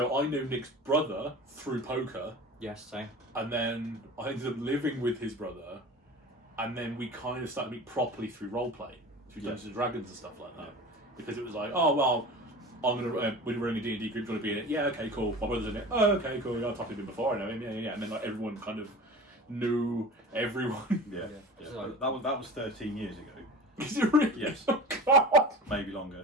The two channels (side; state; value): both; normal; correlation 0.36